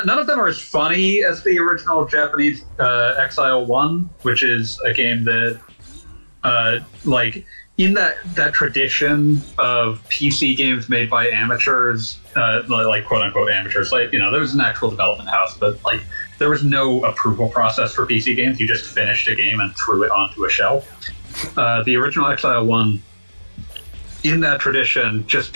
them are as funny as the original Japanese Exile 1, which is a game that, like, in that tradition of PC games made by amateurs, like quote-unquote amateurs, like, you know, there was an actual development house, but, like, there was no approval process for PC games. You just finished a game and threw it onto a shelf. The original Exile 1, in that tradition, just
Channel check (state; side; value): inverted; both; correlation -1.00